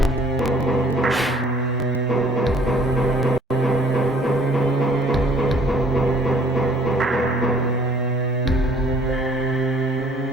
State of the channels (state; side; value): normal; both; correlation 0.58